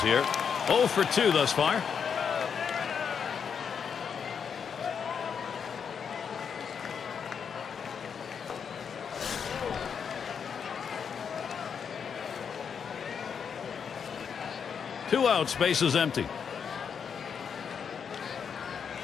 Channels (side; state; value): right; quieter; 6.9 dB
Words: here. 0 for 2 thus far. Two outs, bases empty.